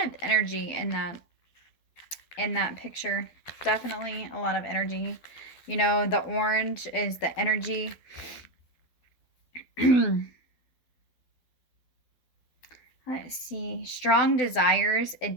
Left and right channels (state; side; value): late; right; 12 ms